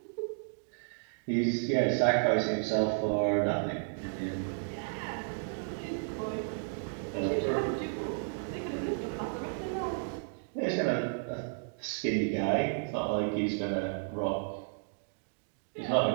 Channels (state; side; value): silent; left; digital silence